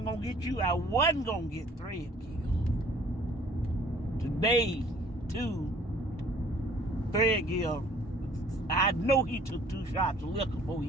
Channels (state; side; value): normal; both; correlation 0.55